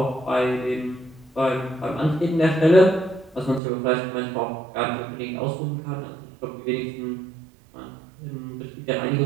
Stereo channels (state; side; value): drops out; left; at 3.6 s